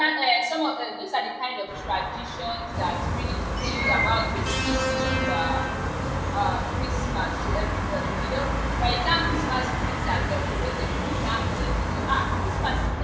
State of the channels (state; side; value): identical; both; correlation 1.00